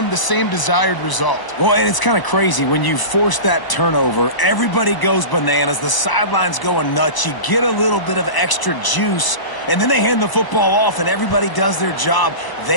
the same desired result. Well, and it's kind of crazy. When you force that turnover, everybody goes bananas. The sideline's going nuts. You get a little bit of extra juice, and then they hand the football off, and everybody does their job.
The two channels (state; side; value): late; right; 1.0 ms